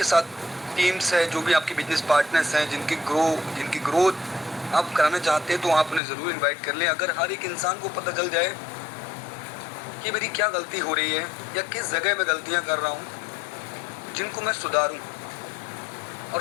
साथ टीम्स है, जो भी आपके बिजनेस पार्टनर्स हैं, जिनकी ग्रोथ आप कराना चाहते हैं, तो आप उन्हें ज़रूर इनवाइट कर लें। अगर हर एक इंसान को पता चल जाए कि मेरी क्या गलती हो रही है या किस जगह मैं गलतियां कर रहा हूं जिनको मैं सुधारूं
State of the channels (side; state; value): right; drops out; at 6.0 s